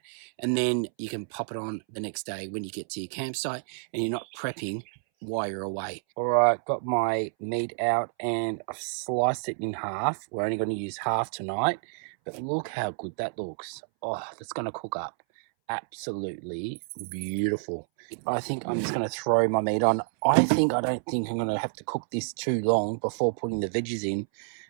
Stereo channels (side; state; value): left; silent; 59 dB below the other